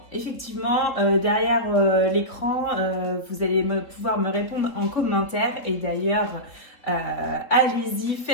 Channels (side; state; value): right; late; 3.8 ms